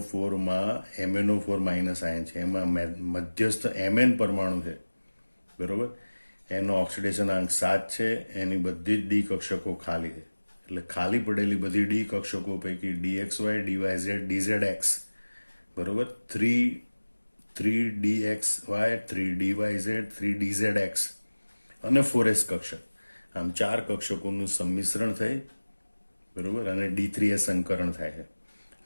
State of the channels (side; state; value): both; inverted; correlation -1.00